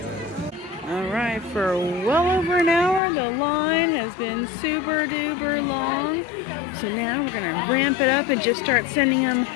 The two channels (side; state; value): right; drops out; at 3.0 s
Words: Alright, for well over an hour, the line has been super duper long. So now we're going to ramp it up and just start sending them